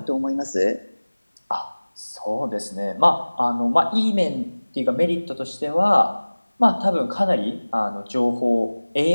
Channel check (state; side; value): inverted; both; correlation -1.00